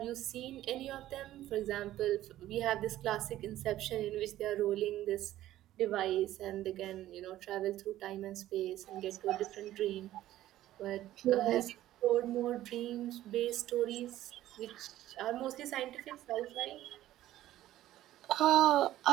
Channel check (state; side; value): quieter; left; 14.0 dB